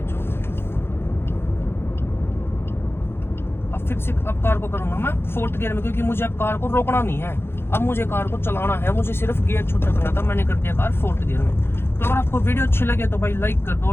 अब फिर से अब कार को करूंगा मैं 4th गियर में, क्योंकि मुझे अब कार को रोकना नहीं है, अब मुझे कार को चलाना है, मुझे सिर्फ गियर छोटा करना था। मैंने कर दिया कार 4th गियर में। तो अगर आपको वीडियो अच्छी लगे तो भाई लाइक कर दो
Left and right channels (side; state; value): right; late; 0.11 ms